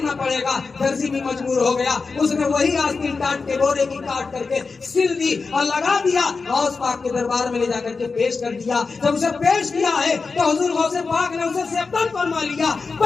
پڑے گا۔ درزی بھی مجبور ہو گیا، اس نے وہی آستین کاٹ کے بورے کی کاٹ کر کے سل دی اور لگا دیا، غوث پاک کے دربار میں لے جا کر کے پیش کر دیا۔ جب اسے پیش کیا ہے تو حضور غوث پاک نے اسے سیبتن فرما لیا،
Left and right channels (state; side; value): quieter; right; 4.5 dB